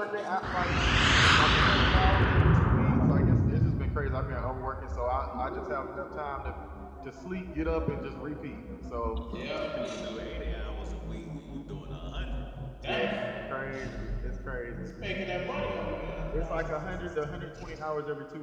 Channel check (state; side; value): identical; both; correlation 1.00